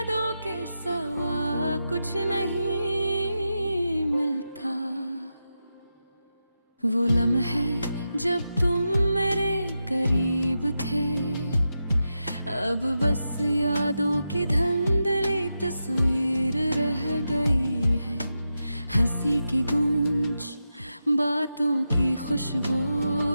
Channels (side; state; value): both; inverted; correlation -0.89